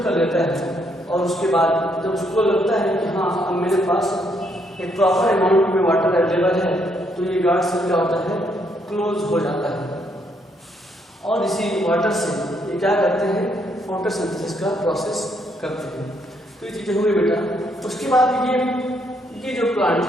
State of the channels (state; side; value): normal; both; correlation 0.73